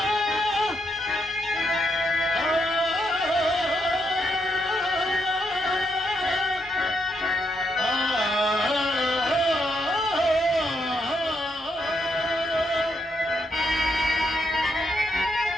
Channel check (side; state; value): both; normal; correlation 0.78